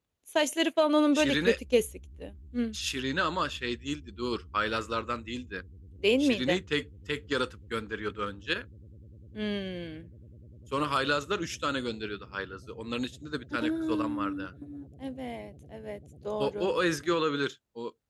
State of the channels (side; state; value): both; identical; correlation 1.00